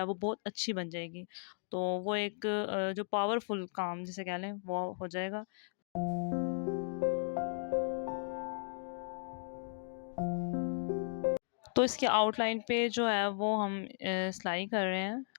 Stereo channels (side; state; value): right; silent; digital silence